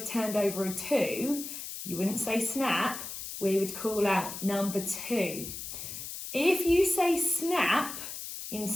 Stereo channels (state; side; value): noise; left; hiss, 8 dB below the sound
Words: turned over a 2, you wouldn't say Snap, we would call out number 2. If you say Snap